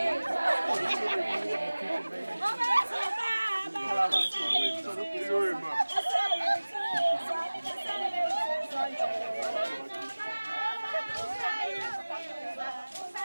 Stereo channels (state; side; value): inverted; both; correlation -1.00